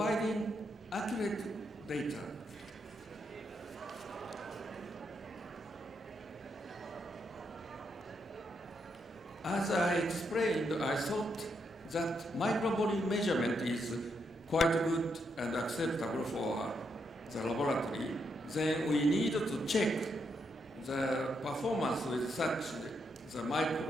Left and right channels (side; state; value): both; normal; correlation 0.79